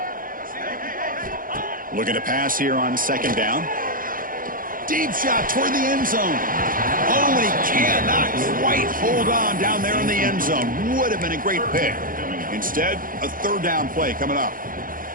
Looking to pass here on 2nd down. Deep shot toward the end zone. Oh, and he cannot quite hold on down there in the end zone. Would have been a great pick. Instead, a third down play coming up.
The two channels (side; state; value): left; late; 0.40 ms